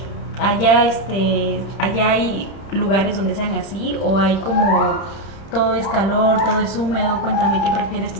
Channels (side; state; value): right; late; 31 ms